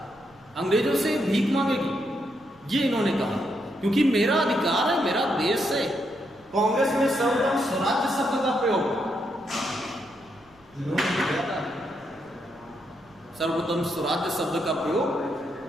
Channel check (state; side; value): noise; right; rumble, 30 dB below the sound